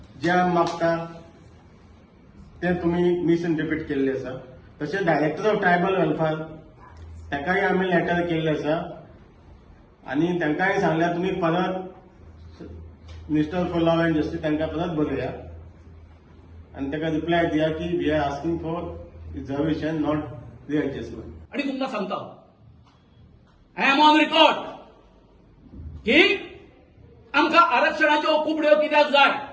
जे आमी मागता ते तुमी मिसइंटरप्रीट केल्ले आसा. तशें डायरेक्टर ऑफ ट्रायबल वेलफेअर ताकाय आमी लेटर केल्ले आसा आनी तांकांय सांगल्यार तुमी परत minister for law and justice तांकां परत बरया आनी ताका रिप्लाय दिया की we are asking for reservation not readjustment. आणि तुमकां सांगता आय एम ऑन रिकॉर्ड की आमकां आरक्षणाच्यो कुबड्यो कित्याक जाय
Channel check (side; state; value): both; identical; correlation 1.00